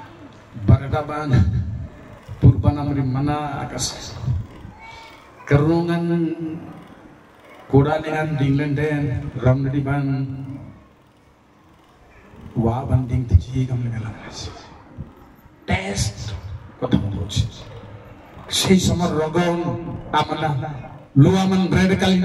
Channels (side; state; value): both; identical; correlation 1.00